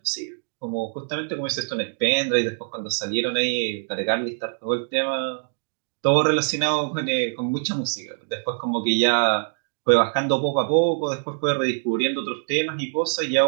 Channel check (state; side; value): silent; left; digital silence